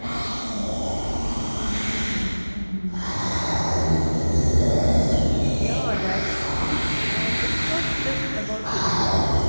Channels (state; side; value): inverted; both; correlation -1.00